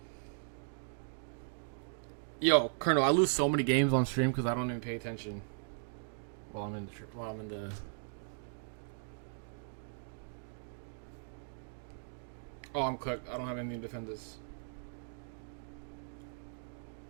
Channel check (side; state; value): left; silent; digital silence